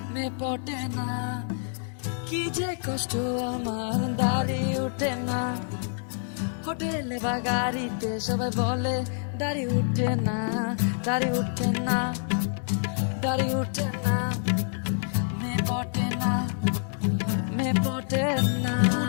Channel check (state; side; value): silent; right; digital silence